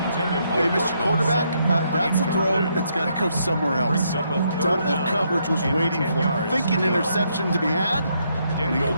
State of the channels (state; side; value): inverted; both; correlation -0.75